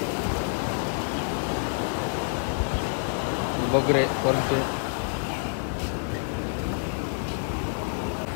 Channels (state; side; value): silent; right; 60 dB below the other